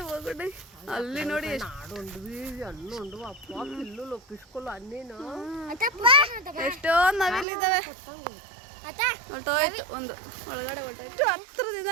బాగుండే. అల్లి నోడి ಎಷ್ಟೋ ನವಿಲಿದ್ದಾವೆ. ಹೊರಟೋಯ್ತು ಒಂದು ಒಳಗಡೆ ಹೊರಟೋಯ್ತು. ಹತ್ರದಿಂದ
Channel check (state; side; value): drops out; left; at 7.5 s